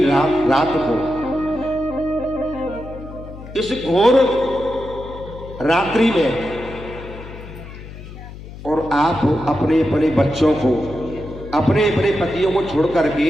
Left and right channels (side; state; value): left; noise; hum, 14 dB below the sound